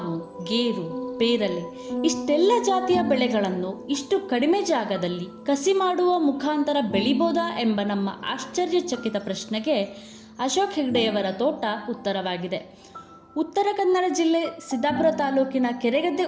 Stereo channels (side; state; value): both; identical; correlation 1.00